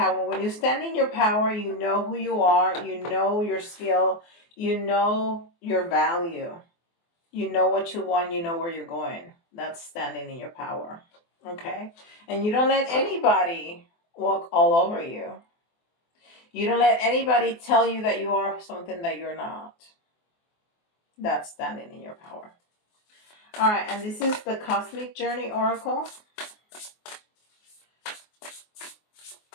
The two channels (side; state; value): right; late; 24 ms